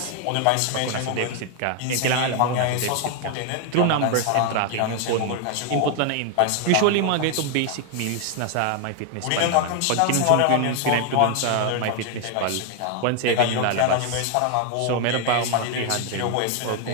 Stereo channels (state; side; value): different; both; correlation 0.01